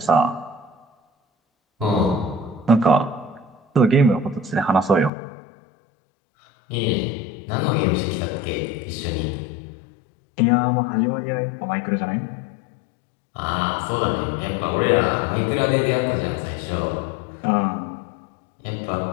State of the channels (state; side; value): drops out; right; at 5.1 s